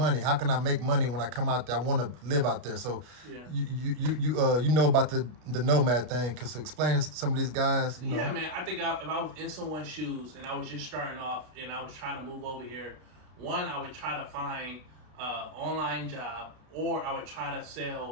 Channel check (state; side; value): late; left; 33 ms